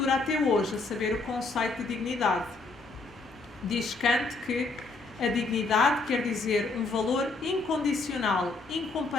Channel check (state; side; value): quieter; right; 3.6 dB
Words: até hoje, a saber, o conceito de dignidade. Diz Kant que a dignidade quer dizer um valor incondicional,